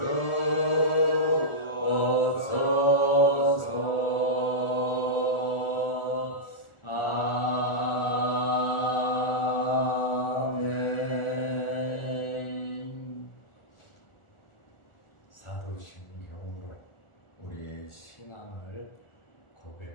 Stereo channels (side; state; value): right; late; 1.4 ms